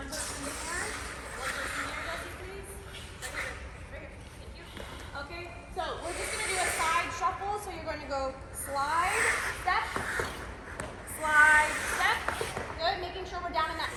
person there, one person there, Jesse, please. Right here. Thank you. Okay, so we're just going to do a side shuffle. So you're going to go slide, step, good, making sure we're down in that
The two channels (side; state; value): both; identical; correlation 1.00